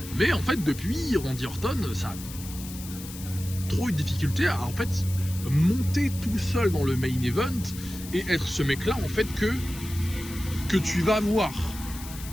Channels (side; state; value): left; noise; hiss, 13 dB below the sound